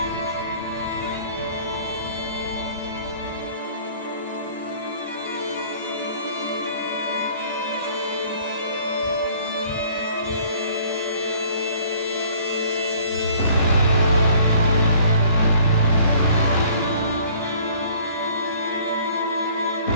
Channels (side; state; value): both; inverted; correlation -0.55